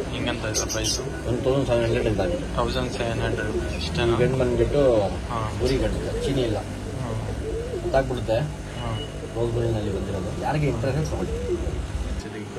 ಹಿಂಗಂತ ಇದೆ ಪ್ರೈಸು. 1700 ಇದ್ದಾವೆ. 1700 ಇಷ್ಟೇನಾ? ಗಂಡು ಬಂದ್ಬಿಟ್ಟು ಹಾಂ. ಗುರಿ ಗಂಡು, ಚೀನಿ ಇಲ್ಲ, ಗೊತ್ತಾಗ್ಬಿಡುತ್ತೆ. ಹಾಂ. ರೋಸ್ ಗೋಲ್ಡ್ನಲ್ಲಿ ಬಂದಿರೋದು. ಯಾರಿಗೆ ಇಂಟ್ರೆಸ್ಟ್ ತಗೊಳ್ಳಿ. ಸಿದ್ದಿಕ್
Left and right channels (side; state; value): both; identical; correlation 1.00